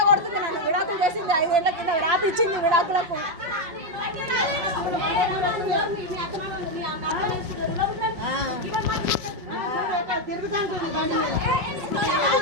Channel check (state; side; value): late; left; 5.4 ms